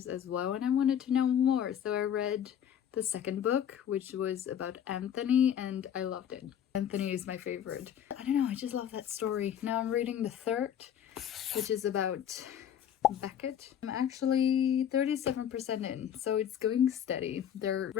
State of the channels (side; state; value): right; quieter; 9.4 dB